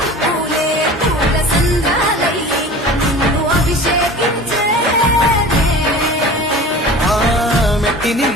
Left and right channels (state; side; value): normal; both; correlation 0.38